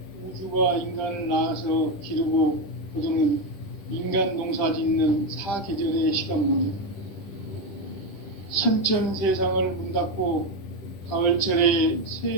우주가 인간을 낳아서 기르고 거두는 인간 농사 짓는 사계절의 시간론이다. 선천 세상을 문 닫고 가을철에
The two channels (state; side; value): late; right; 10 ms